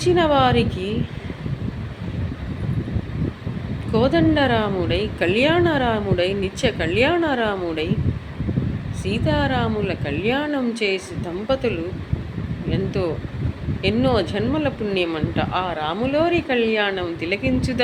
వారికి కోదండరాముడై, కళ్యాణరాముడై, నిత్య కళ్యాణరాముడై, సీతారాముల కళ్యాణం చేసి దంపతులు ఎన్నో జన్మల పుణ్యమంట. ఆ రాములోరి కళ్యాణం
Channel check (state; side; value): identical; both; correlation 1.00